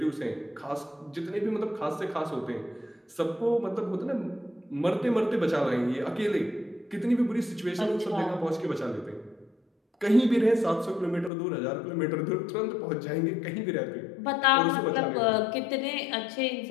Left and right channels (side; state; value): right; drops out; at 11.3 s